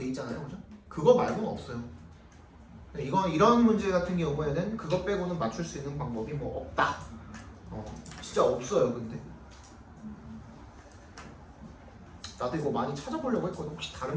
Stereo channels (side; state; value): both; identical; correlation 1.00